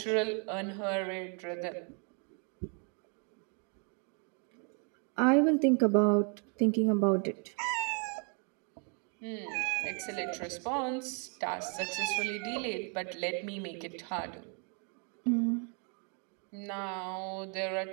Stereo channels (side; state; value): left; quieter; 38.5 dB